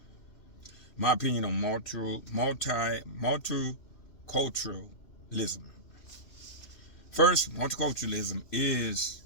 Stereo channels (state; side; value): late; right; 3.0 ms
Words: my opinion on multiculturalism. First, multiculturalism is